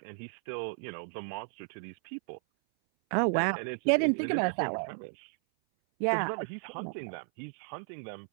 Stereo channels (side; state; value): left; silent; 56 dB below the other